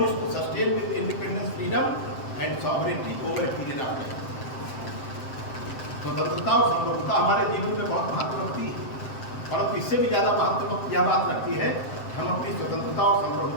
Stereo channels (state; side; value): late; right; 7.7 ms